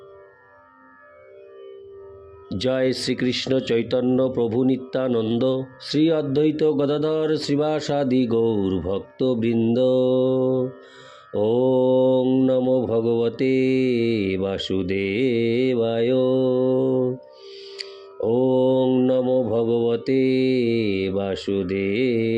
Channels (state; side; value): identical; both; correlation 1.00